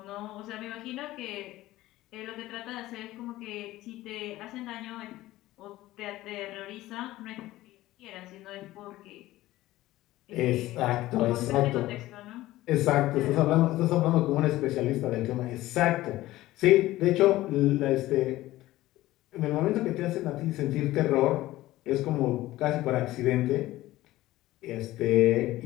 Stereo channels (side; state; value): right; quieter; 16.5 dB